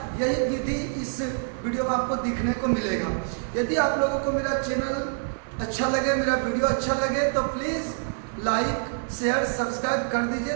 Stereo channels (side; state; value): left; silent; digital silence